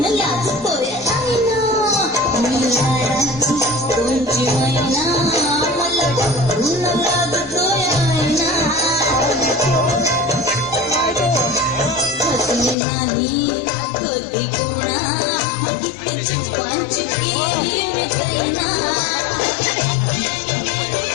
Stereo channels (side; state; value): right; drops out; at 12.8 s